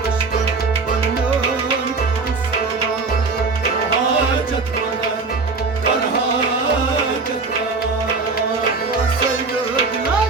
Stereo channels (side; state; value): left; quieter; 4.2 dB